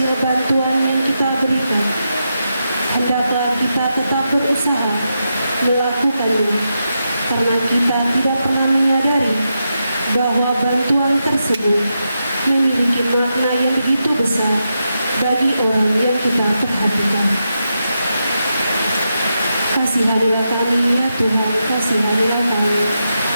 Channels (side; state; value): both; inverted; correlation -0.86